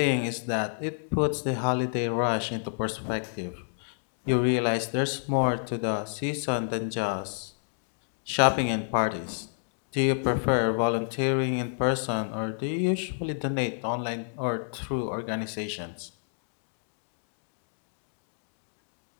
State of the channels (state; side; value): silent; right; digital silence